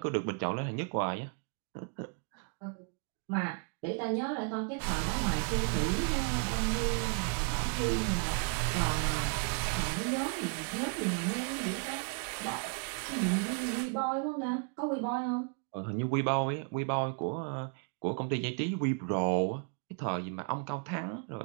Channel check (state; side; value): quieter; left; 36.0 dB